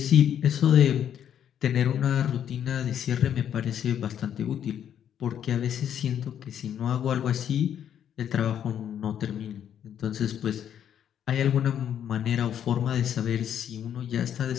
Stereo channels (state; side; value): quieter; right; 9.5 dB